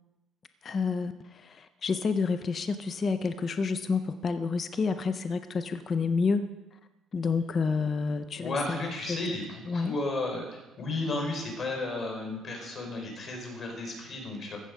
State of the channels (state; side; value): quieter; right; 3.9 dB